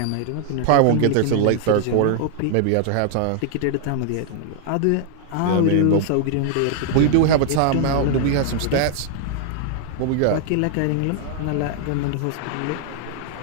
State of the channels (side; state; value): both; different; correlation 0.00